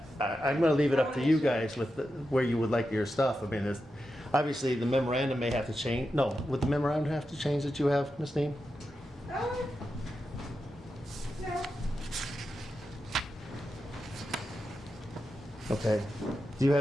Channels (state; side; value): normal; both; correlation 0.89